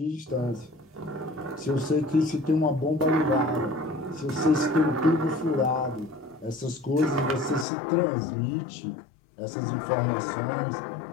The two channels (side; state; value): right; drops out; at 7.7 s